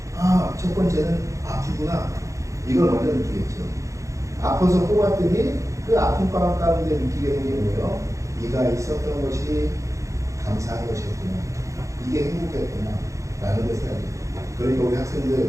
아, 첫 번째는 아프구나. 이걸 먼저 느끼겠죠. 아파서 뽑았더니 그 아픈 방 가운데 느끼게 된 게 뭐예요? 이가 있었던 것이 감사한 것이었구나. 이게 행복했구나. 라는 것을 알게 돼요. 그러니까 우리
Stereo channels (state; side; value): late; left; 0.15 ms